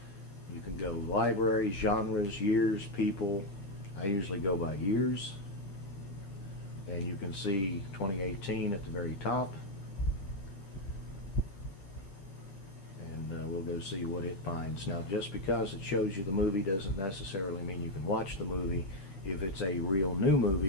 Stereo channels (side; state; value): right; late; 10 ms